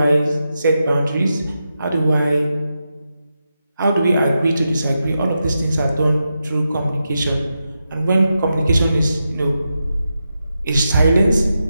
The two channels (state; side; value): inverted; both; correlation -0.88